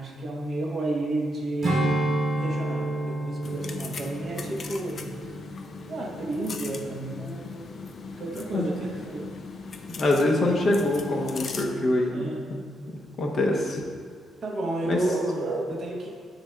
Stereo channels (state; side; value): normal; both; correlation 0.80